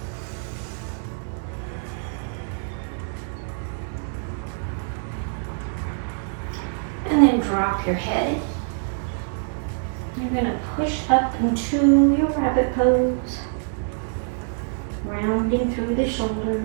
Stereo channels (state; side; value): silent; left; 62 dB below the other